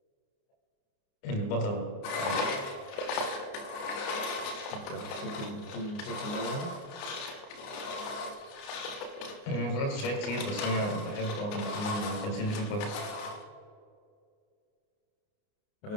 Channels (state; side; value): late; right; 29 ms